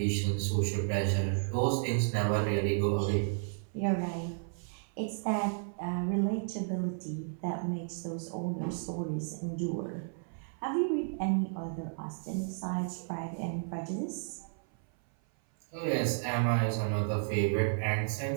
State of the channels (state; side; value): silent; left; 56 dB below the other